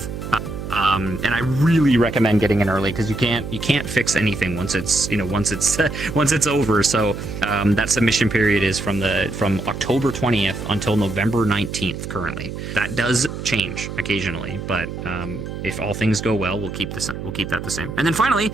And I really recommend getting in early because you can't fix anything once it's once it's over. So that submission period is from October 20th until November 19th currently. That does change occasionally, but if all things go well, we'll keep that the same. And then finally,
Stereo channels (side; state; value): right; noise; hum, 8 dB below the sound